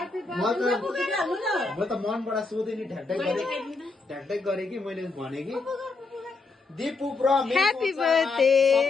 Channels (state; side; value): quieter; right; 3.9 dB